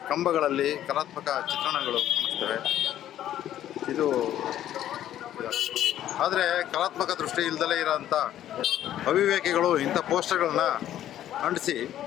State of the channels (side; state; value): right; quieter; 11.9 dB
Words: ಕಂಬಗಳಲ್ಲಿ ಕಲಾತ್ಮಕ ಚಿತ್ರಣಗಳು ಕಾಣಿಸ್ತವೆ. ಇದು ಆದರೆ ಕಲಾತ್ಮಕ ದೃಷ್ಟಿ ಇಲ್ಲದಲೇ ಇರೋಂಥ ಅವಿವೇಕಿಗಳು ಇಂಥ ಪೋಸ್ಟರ್ಗಳನ್ನ ಅಂಟಿಸಿ